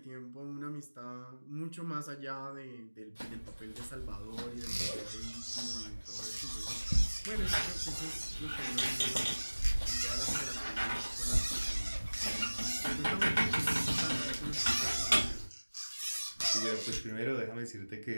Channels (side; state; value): both; inverted; correlation -1.00